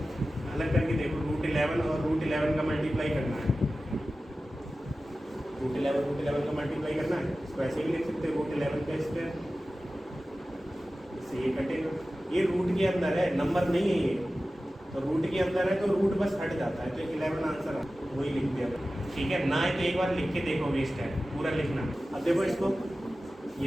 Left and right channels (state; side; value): normal; both; correlation 0.95